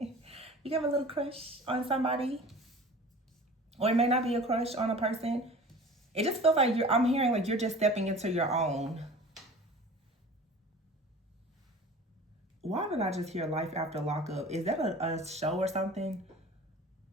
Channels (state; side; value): normal; both; correlation 0.41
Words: can have a little crush on somebody. Or it may not be a crush on a person. It just feels like I'm hearing like you're just stepping into your own. Why did I just hear Life After Lockup? Is that a show or something?